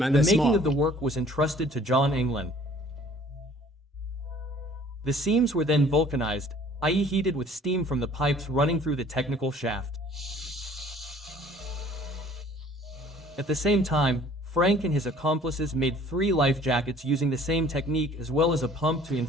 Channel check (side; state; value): both; normal; correlation 0.54